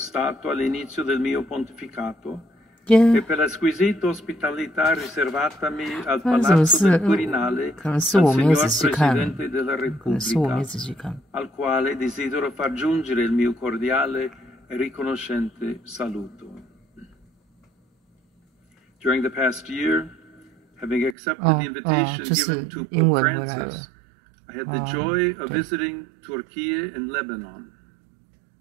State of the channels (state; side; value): drops out; left; at 21.2 s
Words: all'inizio del mio pontificato e per la squisita ospitalità riservatami al Palazzo del Quirinale dal signor Presidente della Repubblica, al quale desidero far giungere il mio cordiale e riconoscente saluto. During the past year, having accepted the invitation given to Pope Francis, I had the joy of visiting Turkey and Lebanon.